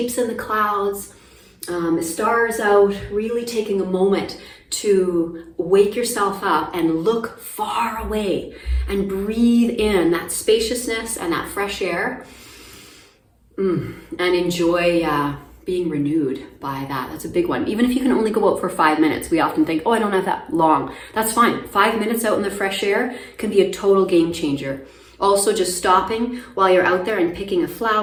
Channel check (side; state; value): both; identical; correlation 1.00